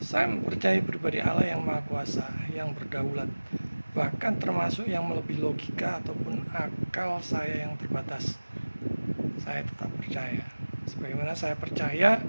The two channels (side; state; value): both; inverted; correlation -1.00